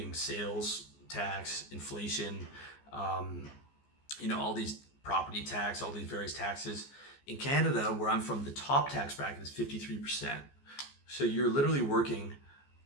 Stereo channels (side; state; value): right; late; 14 ms